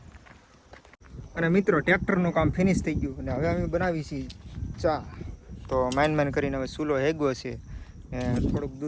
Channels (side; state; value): both; identical; correlation 1.00